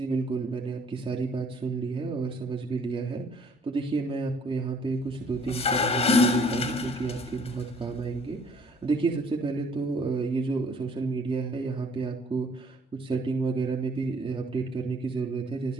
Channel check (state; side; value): normal; both; correlation 0.59